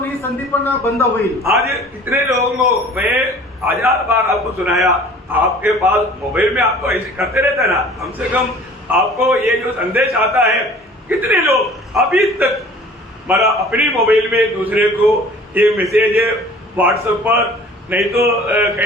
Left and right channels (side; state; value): both; normal; correlation 0.48